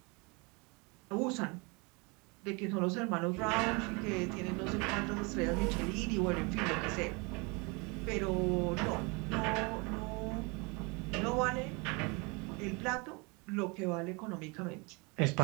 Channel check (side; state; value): left; quieter; 29.4 dB